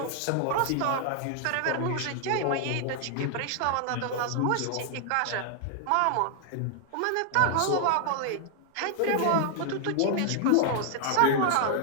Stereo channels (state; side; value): different; both; correlation 0.00